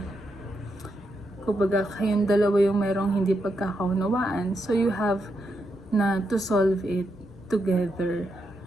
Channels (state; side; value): normal; both; correlation 0.82